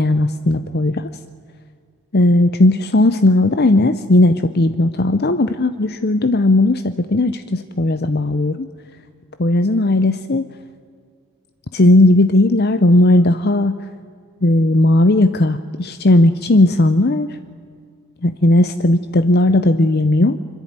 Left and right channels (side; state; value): both; normal; correlation 0.66